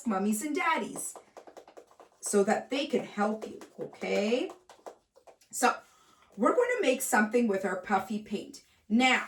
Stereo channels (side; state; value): both; identical; correlation 1.00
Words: mummies and daddies so that they can help you, okay? So we're going to make something with our puffy paint.